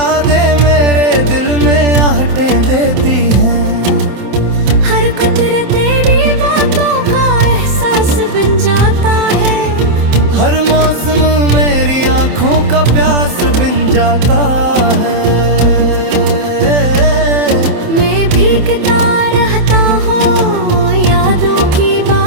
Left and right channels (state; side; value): late; left; 27 ms